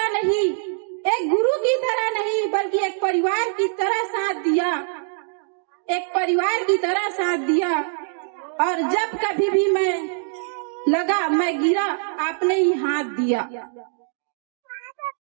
नहीं, एक गुरु की तरह नहीं, बल्कि एक परिवार की तरह साथ दिया, एक परिवार की तरह साथ दिया। और जब कभी भी मैं लगा, मैं गिरा, आपने ही हाथ दिया।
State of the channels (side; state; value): left; silent; digital silence